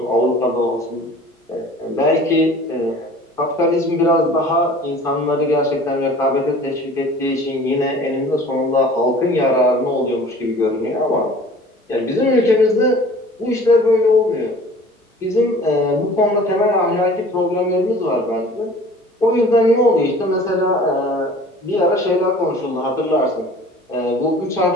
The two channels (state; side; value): normal; both; correlation 0.46